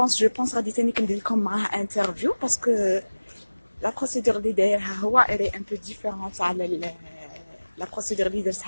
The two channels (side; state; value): both; inverted; correlation -1.00